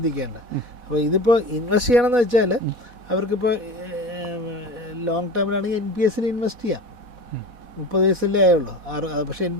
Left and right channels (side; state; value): left; late; 4.1 ms